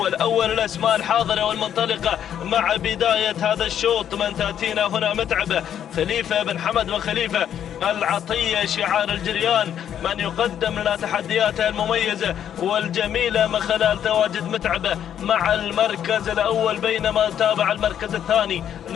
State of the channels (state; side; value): quieter; right; 9.6 dB